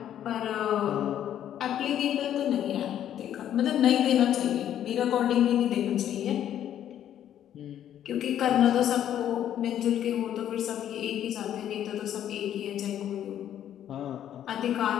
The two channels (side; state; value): right; quieter; 10.7 dB